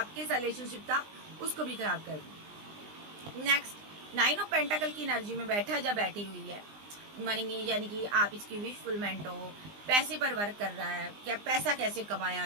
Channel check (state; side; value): late; left; 20 ms